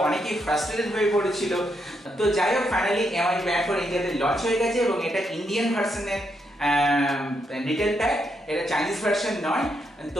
অনেকেই ফ্রাস্ট্রেটেড হয়ে পড়েছিল। তো যাই হোক, ফাইনালি এমআই ব্যান্ড 4 ইন্ডিয়াতে লঞ্চ হয়ে গেছে এবং এটা ইন্ডিয়ান ভার্সনের রিটেল প্যাক, এটা চাইনিজ ভার্সন নয়।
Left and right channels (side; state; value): both; normal; correlation 0.79